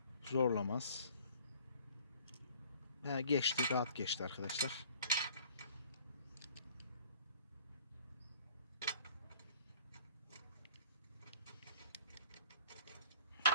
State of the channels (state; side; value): inverted; both; correlation -0.54